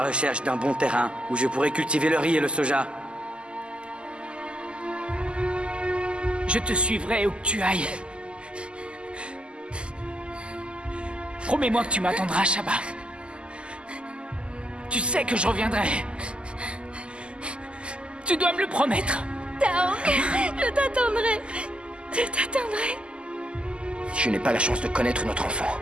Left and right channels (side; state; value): left; late; 0.051 ms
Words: recherche d'un bon terrain où je pourrai cultiver le riz et le soja. Je te suivrai où que tu ailles. Promets-moi que tu m'attendras, Shaba. Tu sais que je reviendrai. Tu dois me le promettre. Taong, je t'attendrai. Je t'attendrai. Si je n'ai pas la chance de connaître notre enfant,